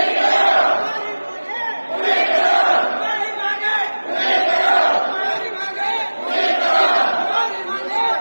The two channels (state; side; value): inverted; both; correlation -1.00